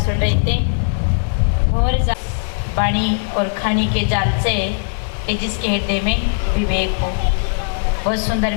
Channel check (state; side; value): silent; right; digital silence